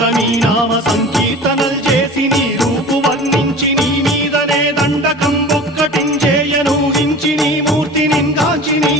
నామ సంకీర్తనల్ చేసి నీ రూపు వర్ణించి నీ మీదనే దండకం ఒక్కటించేయనూహించి నీ మూర్తిని గాంచి నీ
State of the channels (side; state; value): both; normal; correlation 0.38